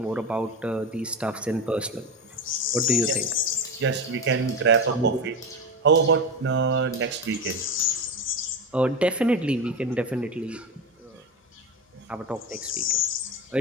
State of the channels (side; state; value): both; normal; correlation 0.20